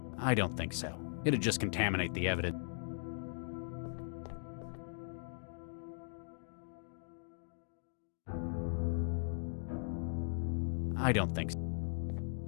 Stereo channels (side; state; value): right; silent; digital silence